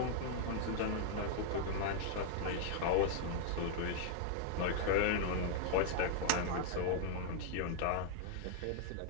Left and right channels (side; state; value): both; different; correlation -0.01